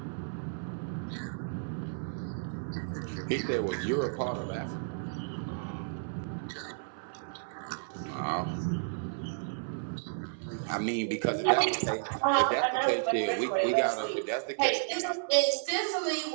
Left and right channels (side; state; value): left; silent; 56 dB below the other